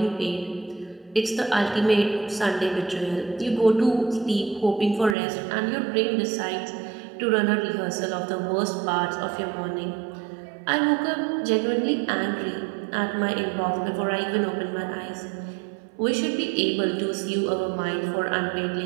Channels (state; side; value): drops out; left; at 5.2 s